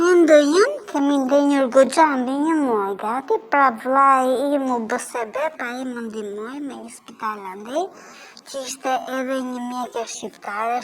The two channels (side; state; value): both; identical; correlation 1.00